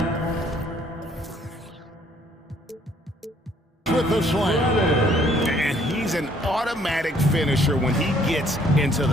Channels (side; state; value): both; normal; correlation 0.62